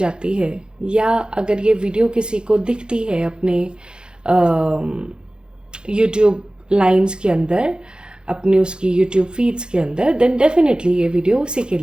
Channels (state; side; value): late; left; 0.049 ms